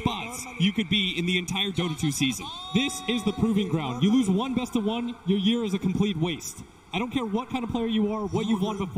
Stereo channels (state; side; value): identical; both; correlation 1.00